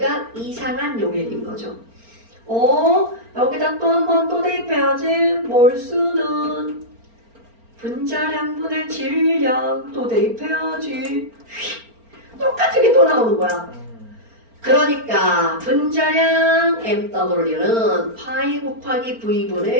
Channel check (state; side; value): late; left; 4.4 ms